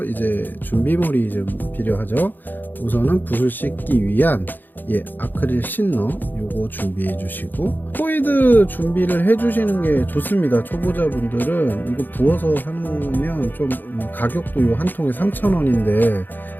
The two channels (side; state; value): right; late; 0.089 ms